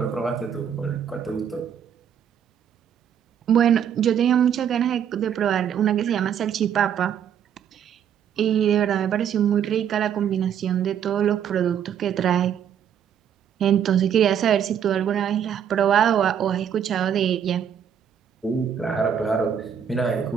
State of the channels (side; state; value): left; quieter; 8.7 dB